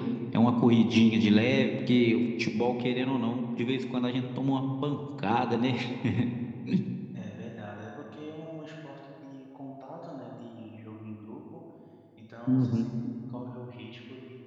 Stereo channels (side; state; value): both; identical; correlation 1.00